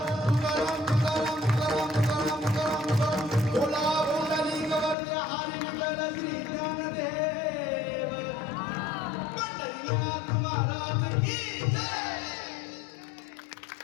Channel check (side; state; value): right; drops out; at 5.0 s